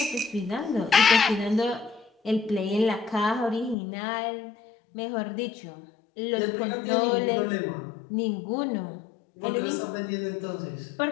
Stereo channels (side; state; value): right; drops out; at 3.8 s